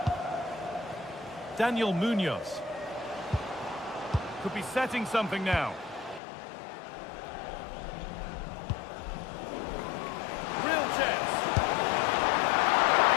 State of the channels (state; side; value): drops out; right; at 6.2 s